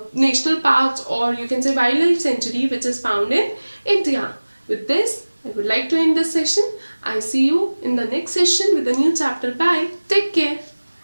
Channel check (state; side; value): inverted; both; correlation -1.00